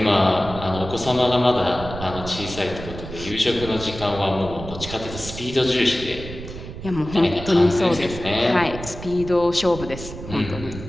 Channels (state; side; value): noise; right; rumble, 11 dB below the sound